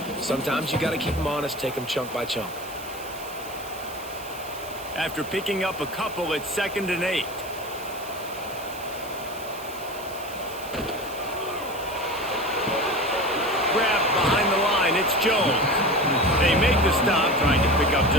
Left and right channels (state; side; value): noise; right; hiss, 16 dB below the sound